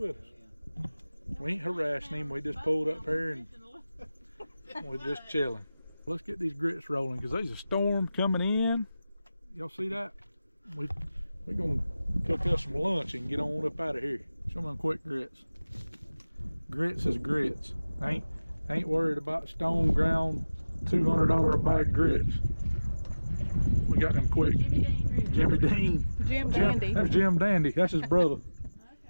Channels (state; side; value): inverted; both; correlation -0.98